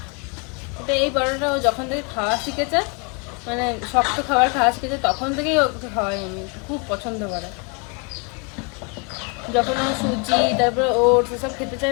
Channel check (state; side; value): quieter; right; 33.3 dB